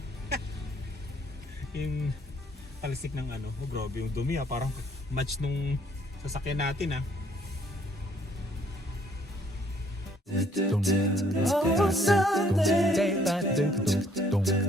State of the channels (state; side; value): normal; both; correlation 0.63